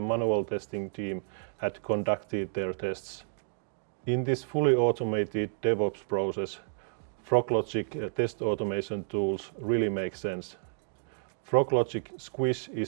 manual testing team had conducted their tests. In this fully automated DevOps process, Froglogic test automation tools really make sense. Froglogic Squish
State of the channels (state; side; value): silent; left; digital silence